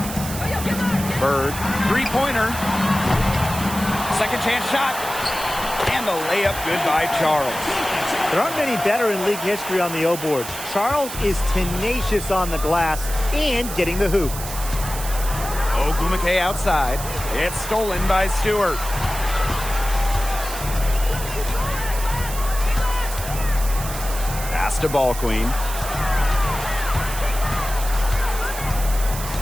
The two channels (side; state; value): right; noise; hiss, 9 dB below the sound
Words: Bird, three-pointer. Second chance shot. And the layup good by Charles. There aren't many better in league history on the O board. Charles is tenacious on the glass and getting the hoop. Ogumake outside. It's stolen by Stewart. Pass to Ball Queen.